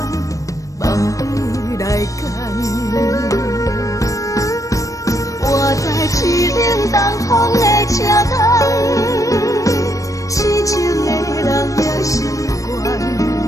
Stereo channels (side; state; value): right; late; 0.16 ms